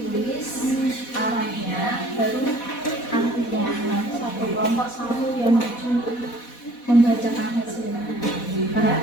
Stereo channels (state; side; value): late; right; 4.1 ms